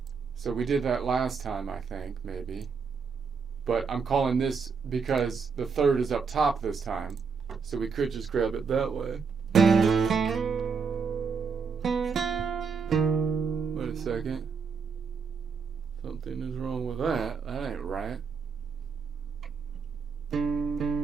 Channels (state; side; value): quieter; left; 5.5 dB